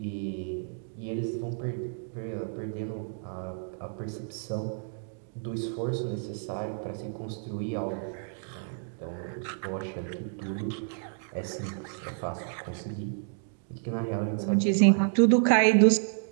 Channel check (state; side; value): silent; left; digital silence